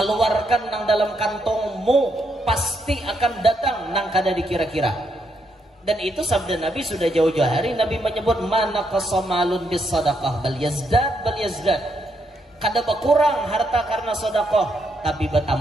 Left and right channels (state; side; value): normal; both; correlation 0.78